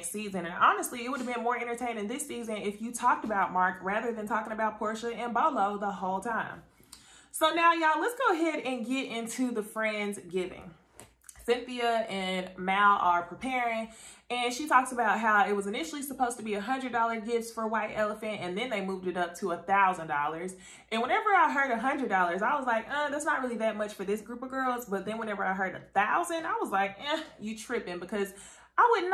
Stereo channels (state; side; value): identical; both; correlation 1.00